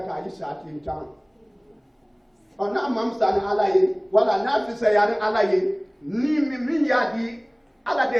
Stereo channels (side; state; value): both; identical; correlation 1.00